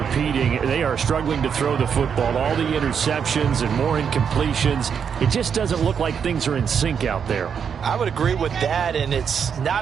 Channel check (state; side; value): quieter; left; 7.2 dB